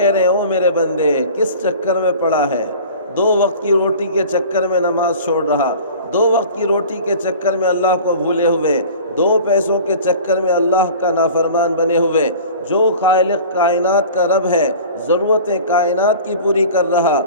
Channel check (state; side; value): inverted; both; correlation -0.41